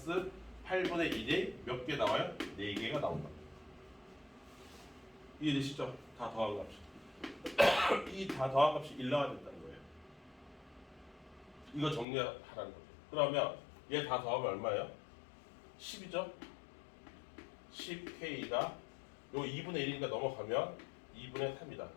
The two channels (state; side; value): drops out; right; at 12.1 s